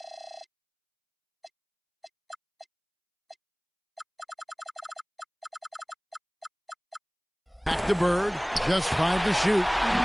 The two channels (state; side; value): identical; both; correlation 1.00